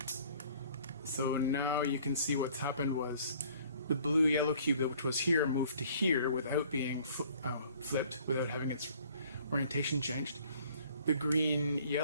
so now you can see what's happened was the blue yellow cube, which was here, moved to here without being flipped, without having its orientation changed. The green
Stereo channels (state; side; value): inverted; both; correlation -0.55